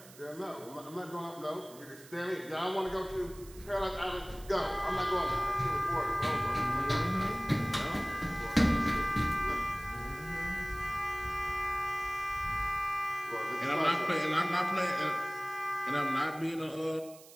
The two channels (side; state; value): right; noise; hiss, 20 dB below the sound